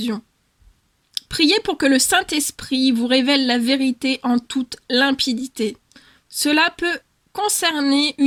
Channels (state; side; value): identical; both; correlation 1.00